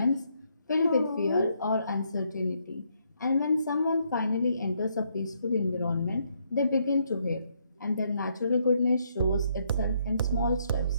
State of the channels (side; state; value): both; inverted; correlation -0.73